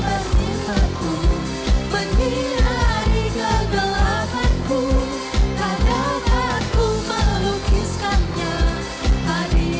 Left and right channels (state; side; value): identical; both; correlation 1.00